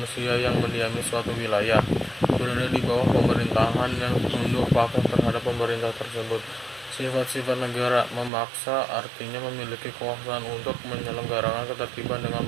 yang mendiami suatu wilayah, berada di bawah pemerintahan yang tunduk patuh terhadap pemerintah tersebut. Sifat-sifat negara: memaksa, artinya memiliki kekuasaan untuk menyelenggarakan ketertiban dengan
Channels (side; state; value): left; drops out; at 8.3 s